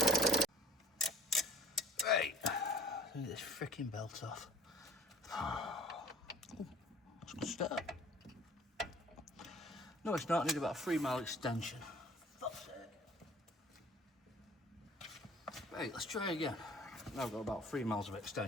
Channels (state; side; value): normal; both; correlation 0.51